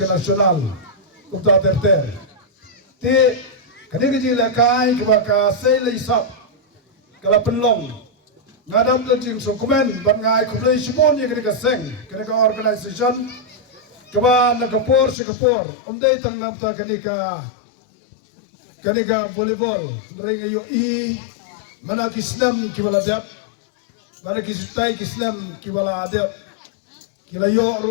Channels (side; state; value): right; drops out; at 15.2 s